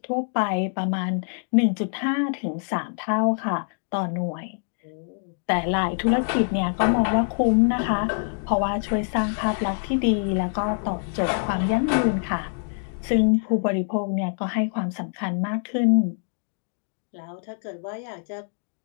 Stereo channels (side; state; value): right; silent; digital silence